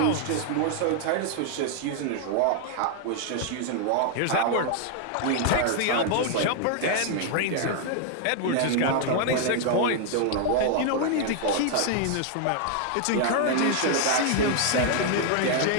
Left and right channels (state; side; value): different; both; correlation 0.00